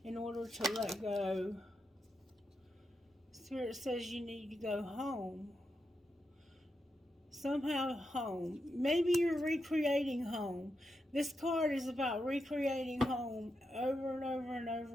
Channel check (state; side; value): normal; both; correlation 0.86